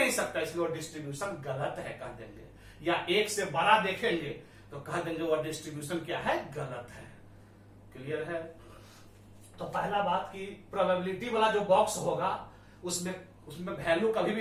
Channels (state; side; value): identical; both; correlation 1.00